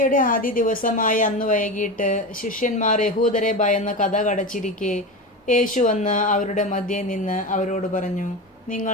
ആദ്യ ദിവസമായ അന്ന് വൈകിട്ട് ശിഷ്യന്മാർ യഹൂദരെ ഭയന്ന് കഥ കടച്ചിരിക്കെ യേശു വന്ന് അവരുടെ മധ്യേ നിന്ന് അവരോട് പറഞ്ഞു,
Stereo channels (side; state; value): both; normal; correlation 0.23